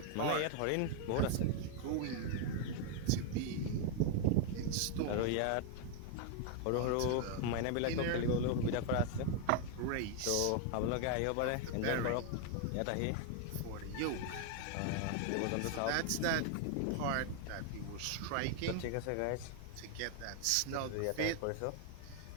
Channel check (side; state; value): both; different; correlation 0.00